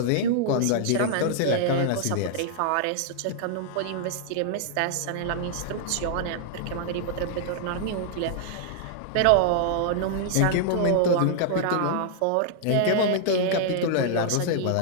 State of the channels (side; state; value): both; different; correlation -0.01